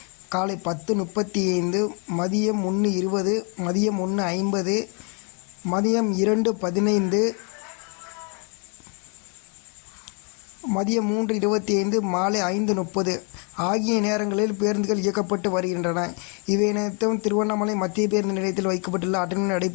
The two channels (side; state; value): right; quieter; 37.2 dB